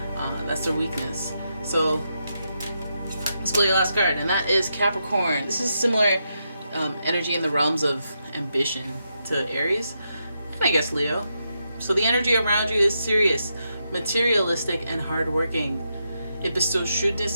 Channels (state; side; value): inverted; both; correlation -0.84